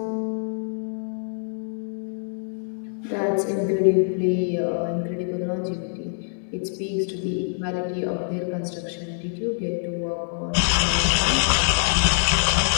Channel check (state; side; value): silent; right; 62 dB below the other